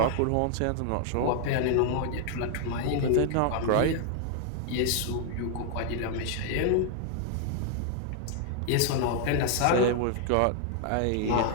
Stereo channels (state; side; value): different; both; correlation 0.00